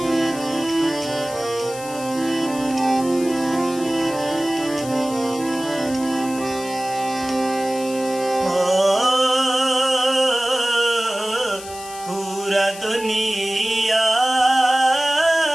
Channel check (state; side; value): noise; left; hiss, 14 dB below the sound